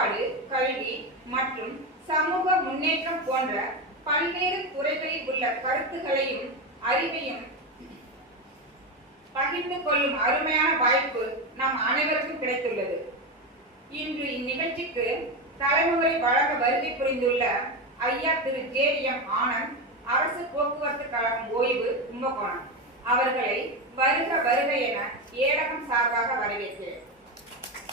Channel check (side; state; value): both; normal; correlation 0.14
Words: கல்வி மற்றும் சமூக முன்னேற்றம் போன்ற பல்வேறு துறைகளில் உள்ள கருத்துக்களையும் அறிவையும் பகிர்ந்து கொள்ளும் அருமையான வாய்ப்பு நம் அனைவருக்கும் கிடைத்துள்ளது. இன்று இந்நிகழ்ச்சிக்கு தலைமுறை வழங்க வருகை புரிந்துள்ள ஐயா திரு ஜெயம் ஆனந்த், அரசு போக்குவரத்து கழகம் ஓய்வு, கும்பகோணம் அவர்களை வருக வருக என ஏடகம் சார்பாக வரவேற்கிறேன்.